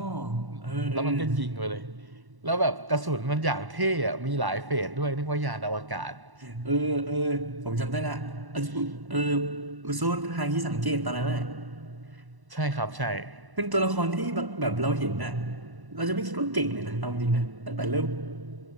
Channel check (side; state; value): left; late; 1.1 ms